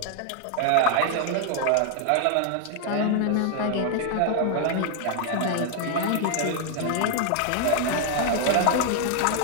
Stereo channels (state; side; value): different; both; correlation 0.00